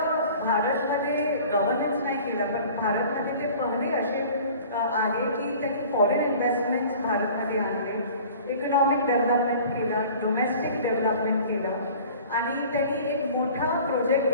भारतमध्ये गव्हर्नन्स नाही केलं, पण भारतमध्ये ते पहिले असे आहे की त्यांनी फॉरेन इन्व्हेस्टमेंट्स भारतमध्ये आणले, इकॉनॉमिक डेव्हलपमेंट केलं, डोमेस्टिक डेव्हलपमेंट केलं, आणि त्यांनी एक मोठा प्रोजेक्ट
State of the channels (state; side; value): inverted; both; correlation -0.46